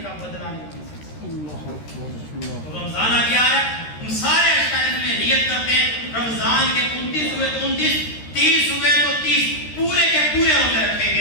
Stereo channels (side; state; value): right; late; 13 ms